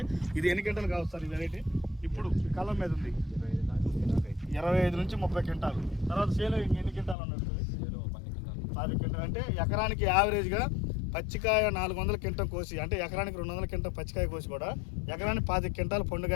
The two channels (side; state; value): right; drops out; at 7.2 s